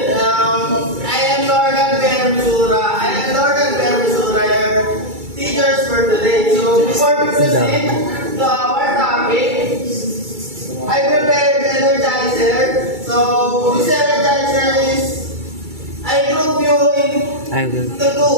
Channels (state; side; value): late; left; 2.3 ms